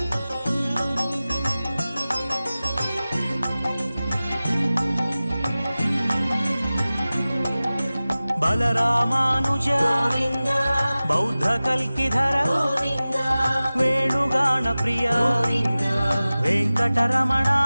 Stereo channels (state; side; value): inverted; both; correlation -0.97